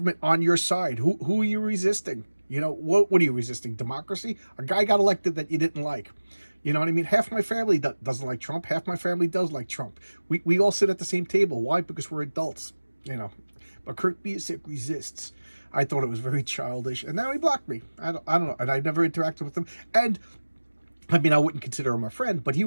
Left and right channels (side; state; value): both; inverted; correlation -1.00